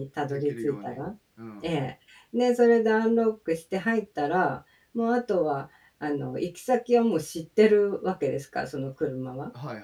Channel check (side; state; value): both; identical; correlation 1.00